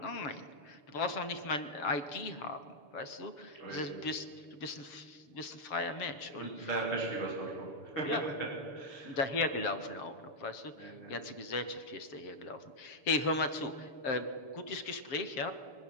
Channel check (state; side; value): late; right; 6.9 ms